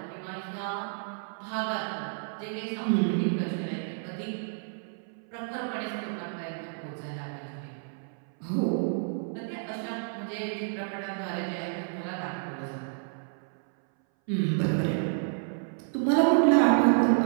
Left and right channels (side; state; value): left; silent; 58 dB below the other